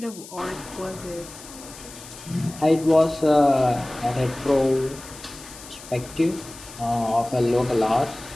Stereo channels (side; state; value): left; noise; hiss, 16 dB below the sound